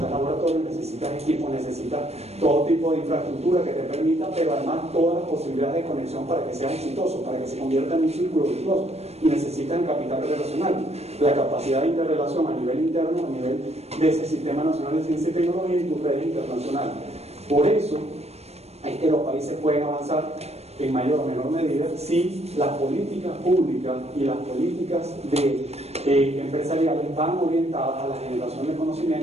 laboratorios, necesitas equipos, necesitas todo tipo de infraestructura que te permita, pero además todas las posibilidades de conexión para que seas exitoso, para que se convierta en un círculo virtuoso. Y necesitas el capital relacional, la capacidad de interrelación a nivel interno, a nivel de ese Sistema Nacional de Ciencia y Tecnología y tus redes internacionales. Por eso es que los países pueden avanzar en mayor o menor medida si las políticas públicas y las políticas empresariales van orientadas a la generación de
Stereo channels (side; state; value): left; late; 0.31 ms